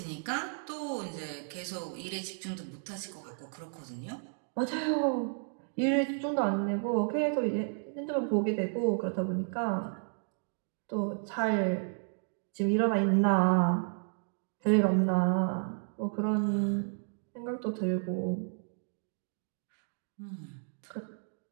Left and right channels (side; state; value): left; silent; 56 dB below the other